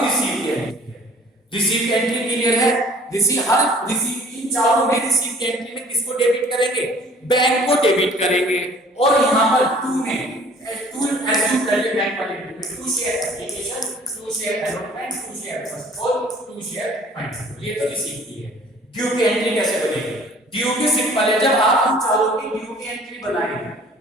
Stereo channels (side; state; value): both; normal; correlation 0.53